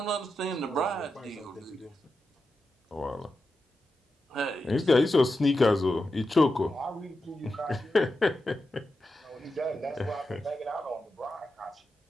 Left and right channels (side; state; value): both; normal; correlation 0.89